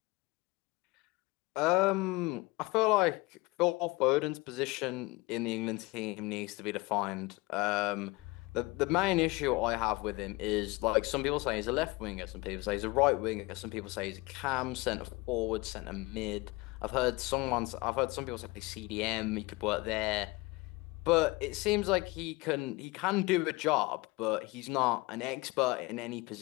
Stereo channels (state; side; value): quieter; right; 23.0 dB